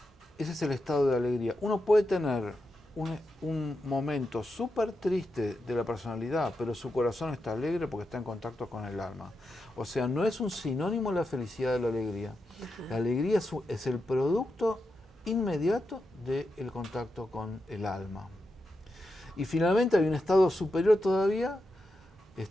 Ese es el estado de alegría. Uno puede tener un momento súper triste de la personalidad, pero su corazón está alegre porque está en contacto con el alma. O sea, no es un sinónimo la felicidad de la alegría. La alegría es el producto inmediato del contacto con el alma. Y finalmente hay un estado superior todavía,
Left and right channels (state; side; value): normal; both; correlation 0.87